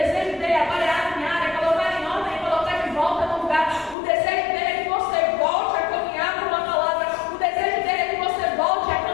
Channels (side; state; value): right; drops out; at 4.0 s